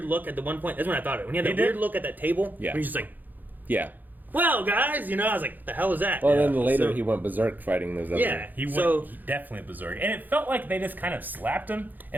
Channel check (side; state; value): left; late; 0.085 ms